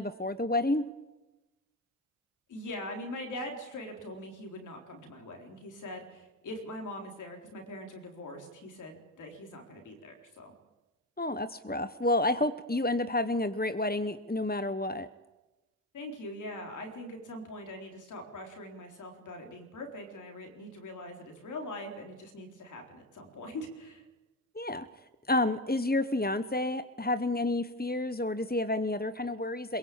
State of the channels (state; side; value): normal; both; correlation 0.19